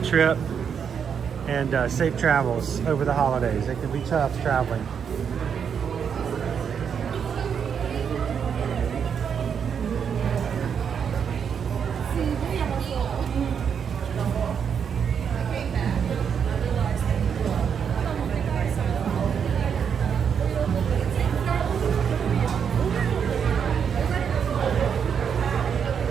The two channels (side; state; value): left; quieter; 7.3 dB